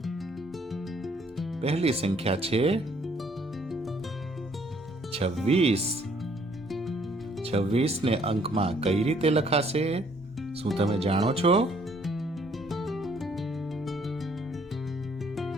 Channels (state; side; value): normal; both; correlation 0.64